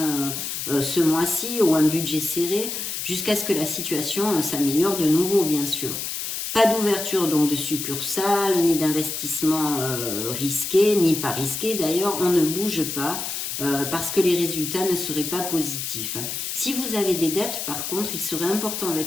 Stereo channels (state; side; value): noise; left; hiss, 4 dB below the sound